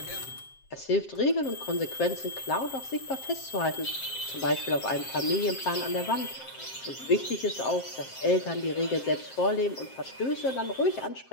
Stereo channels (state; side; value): late; right; 7.6 ms